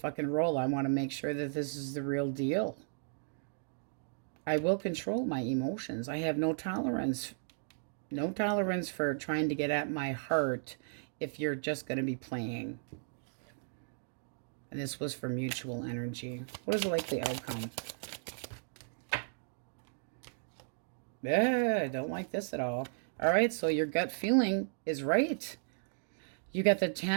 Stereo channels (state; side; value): silent; left; digital silence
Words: roll. I want to make sure that this is the real deal. I will control my emotions. I have no tolerance. No tolerance for trying to get at my heart if you're just going to be playing. And this was for mutual energy. What is the likely outcome? Yeah, I don't like this at all. All right, so your gut feeling is right. You got the